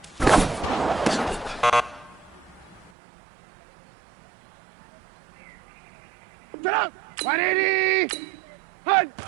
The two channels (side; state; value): left; drops out; at 2.9 s